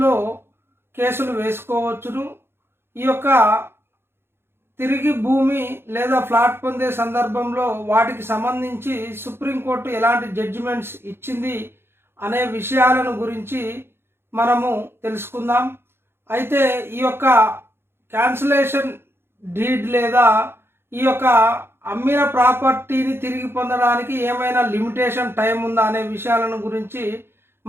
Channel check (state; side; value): late; left; 0.11 ms